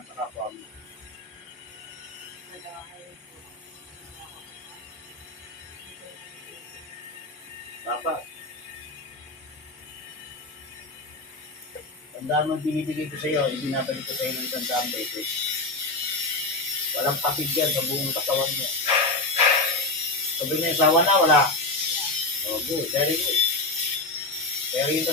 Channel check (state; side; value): quieter; right; 3.0 dB